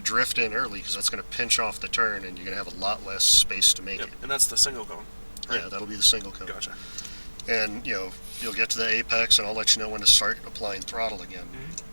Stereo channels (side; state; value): both; inverted; correlation -1.00